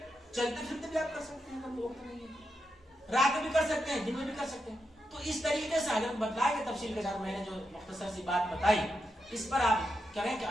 چلتے پھرتے بھی آپ کر سکتے ہیں, اگر وقت نہیں ہے, رات میں بھی کر سکتے ہیں, دن میں بھی کر سکتے ہیں. تو اس طریقے سے حضرت بتلائے کہ تفصیل کے ساتھ میں نے جو مختصر سی بات بتائی, اس پر آپ کریں کہ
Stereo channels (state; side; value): normal; both; correlation 0.85